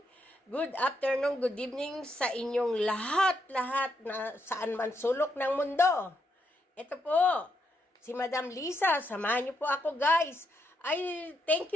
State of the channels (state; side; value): normal; both; correlation 0.79